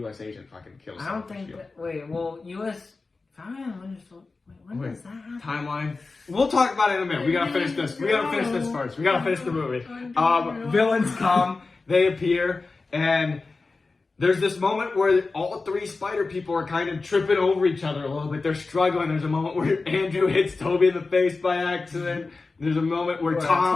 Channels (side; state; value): right; quieter; 3.9 dB